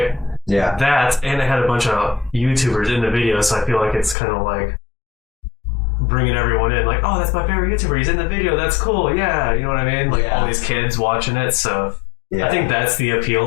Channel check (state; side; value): drops out; right; at 4.2 s